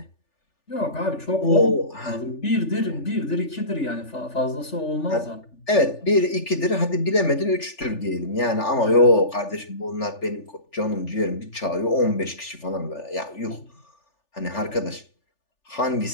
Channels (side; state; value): right; late; 3.4 ms